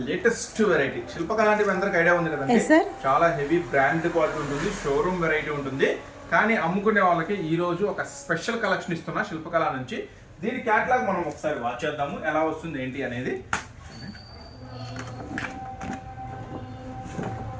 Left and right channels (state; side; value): identical; both; correlation 1.00